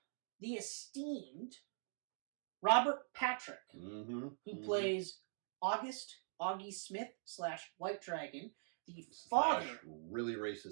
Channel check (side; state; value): left; silent; digital silence